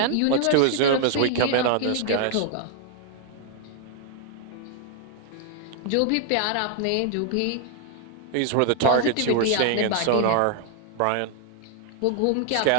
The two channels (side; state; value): both; different; correlation 0.00